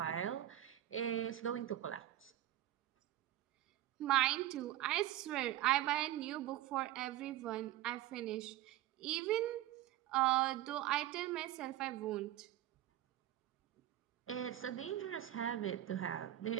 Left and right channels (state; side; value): quieter; left; 13.6 dB